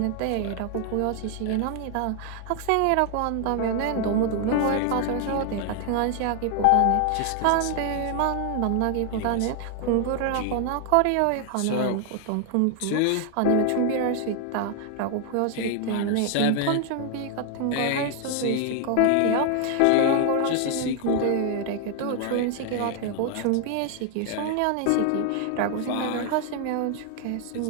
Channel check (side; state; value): both; different; correlation 0.00